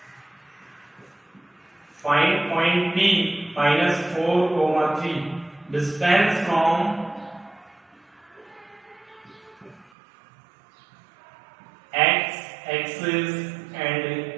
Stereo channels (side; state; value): left; drops out; at 9.9 s